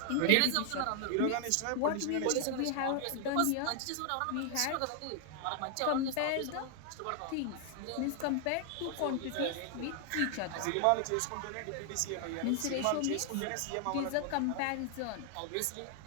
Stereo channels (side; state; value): both; different; correlation 0.00